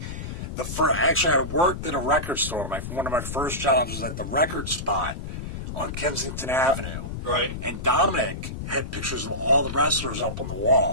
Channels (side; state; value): left; noise; rumble, 7 dB below the sound